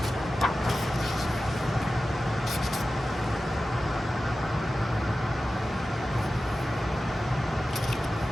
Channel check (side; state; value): both; normal; correlation 0.94